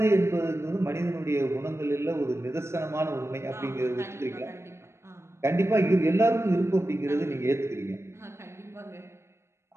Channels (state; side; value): late; left; 0.13 ms